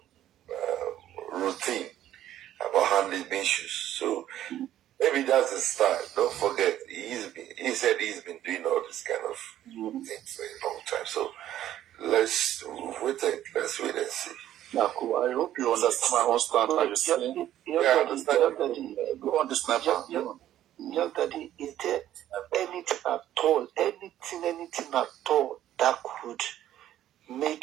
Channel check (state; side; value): quieter; left; 12.3 dB